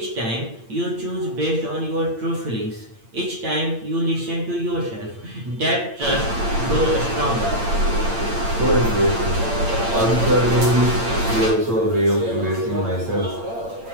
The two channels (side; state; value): left; late; 8.8 ms